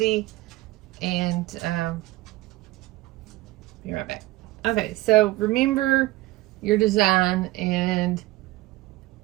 and be right back. Okay, so remember your design and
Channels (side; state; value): left; quieter; 18.3 dB